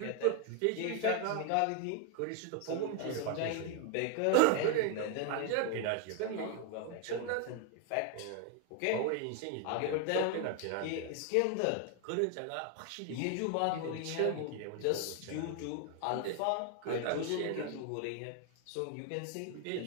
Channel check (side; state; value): both; different; correlation 0.01